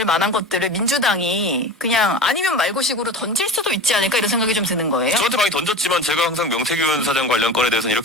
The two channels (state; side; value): normal; both; correlation 0.32